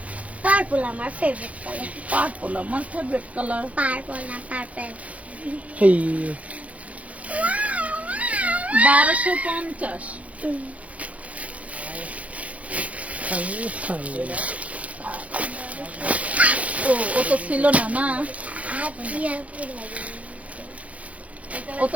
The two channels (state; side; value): late; left; 0.067 ms